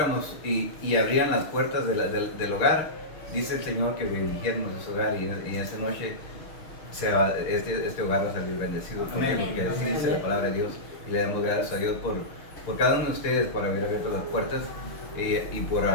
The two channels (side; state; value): right; late; 6.6 ms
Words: y abrieran las puertas del hogar, dice el Señor que bendijéramos ese hogar y esa noche este hogar va a salir bendecido. ¿Por qué? Porque así dice la palabra de Dios y le damos gracias a Dios por cada uno de ustedes, por haber abierto las puertas y por